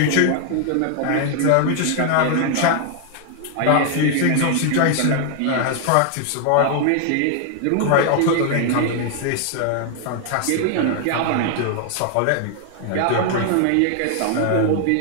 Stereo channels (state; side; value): different; both; correlation 0.00